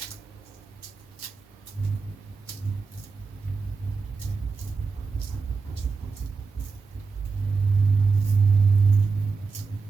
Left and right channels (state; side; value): quieter; left; 4.6 dB